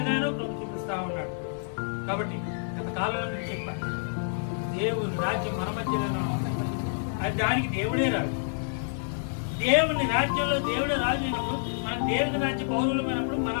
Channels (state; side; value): silent; right; digital silence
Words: ప్రభు చూపిస్తా ఉన్నాడు. కాబట్టి గత కాలంలో నేను చెప్పాను, దేవుని రాజ్యం మన మధ్యలో అది దానికి దేవుడే రాజు. దేవుని రాజ్యంలో దేవుడే రాజు అయినప్పుడు మనం దేవుని రాజ్య పౌరులమైనప్పుడు మన